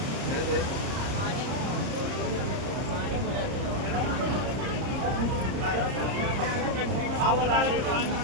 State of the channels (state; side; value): late; left; 30 ms